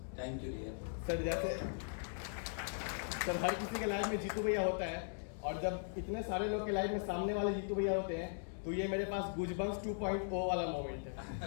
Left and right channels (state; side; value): silent; right; digital silence